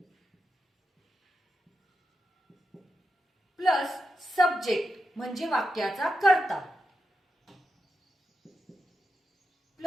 प्लस सब्जेक्ट म्हणजे वाक्याचा कर्ता,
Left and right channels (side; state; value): both; normal; correlation 0.88